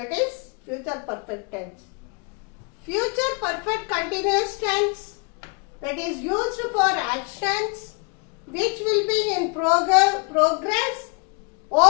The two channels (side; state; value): right; quieter; 32.8 dB